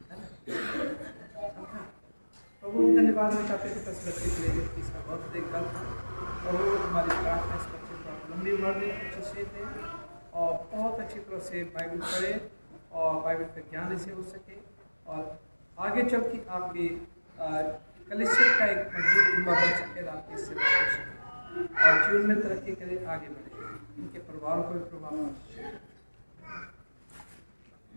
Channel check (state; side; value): inverted; both; correlation -1.00